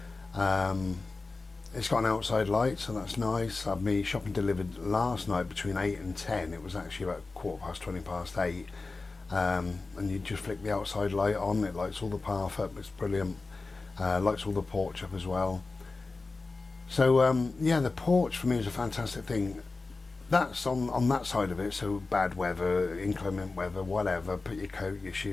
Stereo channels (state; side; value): quieter; right; 3.7 dB